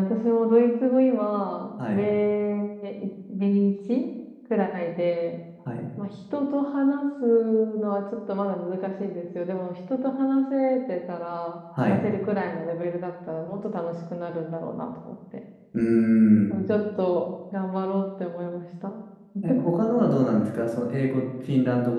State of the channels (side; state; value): both; identical; correlation 1.00